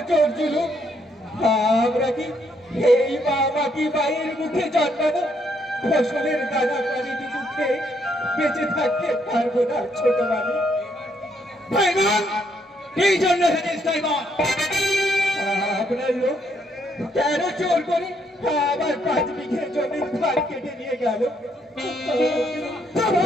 জোর জুলুম? আমরা কি এই মা মাটি বাইয়ের মুখে জন্মানো ফসলের দানা পানিটি মুখে বেঁচে থাকতে পারবো না? ছোট মালিক, ভাইবান এই জন্য এসেছিস তাই বল। আপনার লোক কেন চোর করে আমার 5 বিঘে জমির ধার কেটে নিয়ে গেল?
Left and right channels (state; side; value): normal; both; correlation 0.72